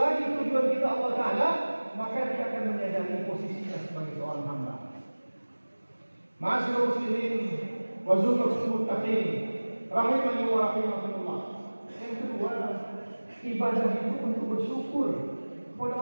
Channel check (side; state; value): both; inverted; correlation -1.00